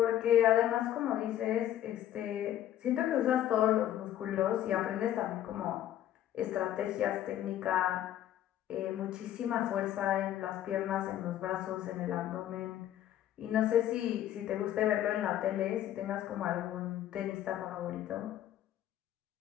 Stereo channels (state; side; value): quieter; right; 12.0 dB